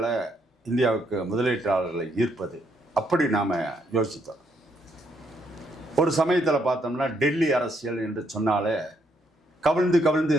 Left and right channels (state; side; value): normal; both; correlation 0.74